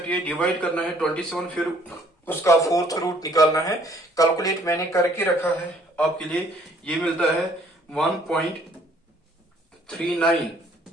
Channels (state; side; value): normal; both; correlation 0.61